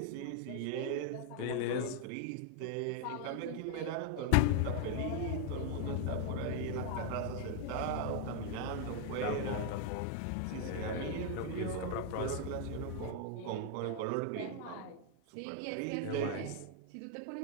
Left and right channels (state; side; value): different; both; correlation 0.00